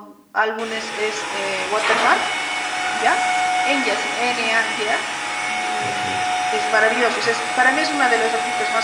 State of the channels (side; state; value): both; identical; correlation 1.00